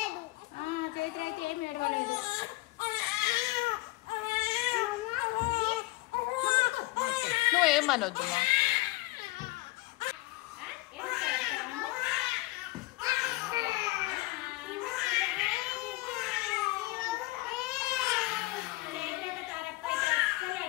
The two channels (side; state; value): right; quieter; 20.5 dB